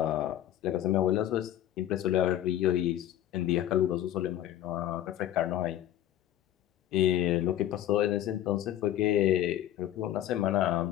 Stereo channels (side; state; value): right; quieter; 12.2 dB